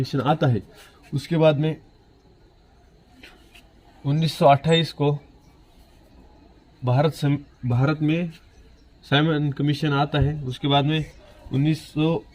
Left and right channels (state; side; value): identical; both; correlation 1.00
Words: आता है। उसके बाद में 1928 को भारत में साइमन कमीशन आता है। उसके बाद में